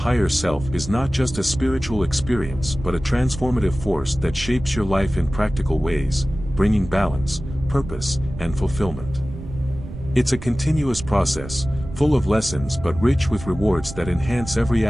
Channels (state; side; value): noise; right; rumble, 11 dB below the sound